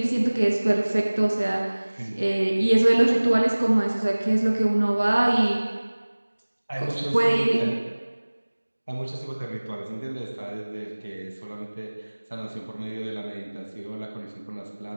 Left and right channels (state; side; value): inverted; both; correlation -1.00